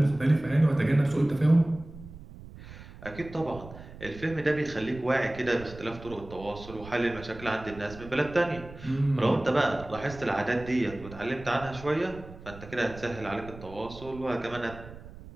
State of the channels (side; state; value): right; noise; rumble, 16 dB below the sound